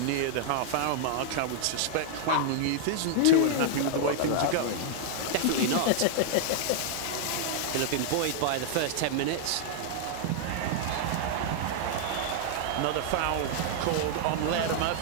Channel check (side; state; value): both; different; correlation -0.01